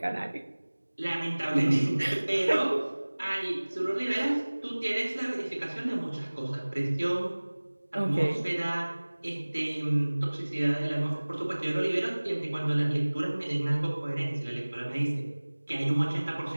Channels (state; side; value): inverted; both; correlation -1.00